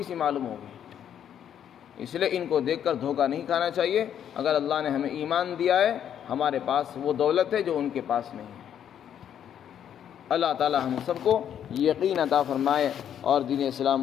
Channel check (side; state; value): right; quieter; 9.5 dB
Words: سی معلوم ہوگی۔ اس لیے ان کو دیکھ کر دھوکہ نہیں کھانا چاہیے۔ اگر اللہ نے ہمیں ایمان دیا ہے، ہمارے پاس وہ دولت ہے جو ان کے پاس نہیں ہے۔ اللہ تعالی ہم سب کو یقین عطا فرمائے اور دین